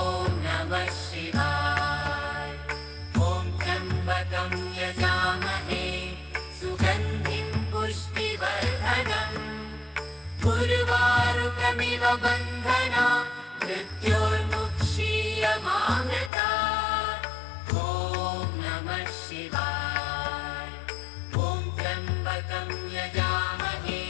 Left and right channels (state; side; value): drops out; right; at 16.3 s